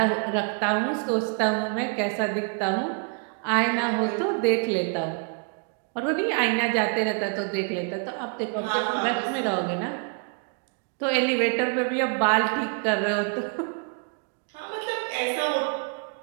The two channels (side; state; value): left; quieter; 38.4 dB